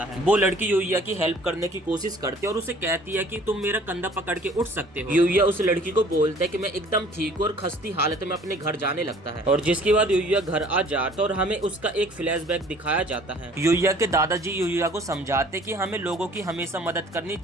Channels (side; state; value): both; normal; correlation 0.53